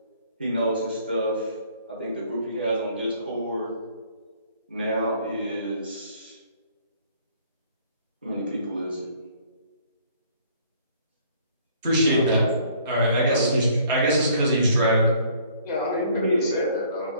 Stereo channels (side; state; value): both; inverted; correlation -0.59